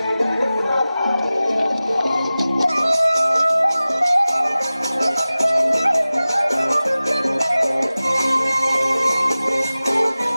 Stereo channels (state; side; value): inverted; both; correlation -0.97